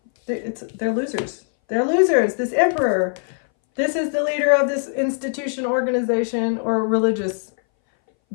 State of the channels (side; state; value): right; silent; 62 dB below the other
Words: they're losers. They're losers. This Emperor, this is the leader of this institution, organization, or religious